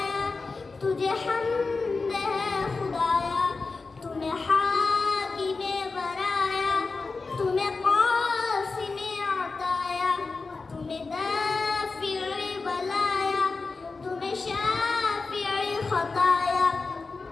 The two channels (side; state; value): right; quieter; 4.1 dB